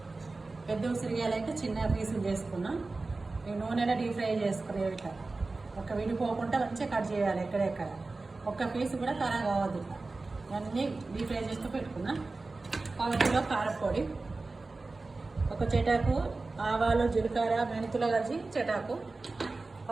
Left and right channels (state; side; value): quieter; left; 3.5 dB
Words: పెద్ద ఉసిరికాయలు అయితే చిన్న పీసులు చేసుకున్నా. ఈ నూనెలో డీప్ ఫ్రై చేసుకునే ఇట్లా ఒక విడిపోకుండా మంచిగా కట్ చేయాలి. ఎక్కడెక్కడ ఒక్క పీసు కూడా ఖరాబ్ కావద్దు. అన్నీ డీప్ ఫ్రై చేస్తూ పెట్టుకున్నా. 1 కిలో కారపొడి, 1 చెటాకు ఆవాలు, జీలకర్ర, మెంతులు కలిసి చెటాకు,